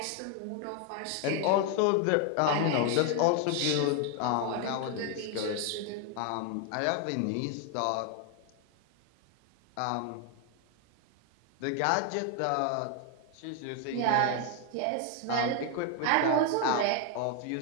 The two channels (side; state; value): both; different; correlation 0.01